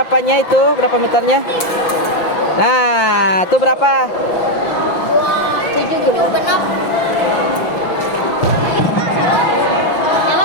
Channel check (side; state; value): right; late; 6.0 ms